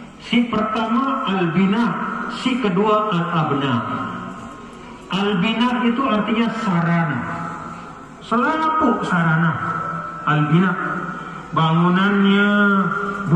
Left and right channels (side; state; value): both; identical; correlation 1.00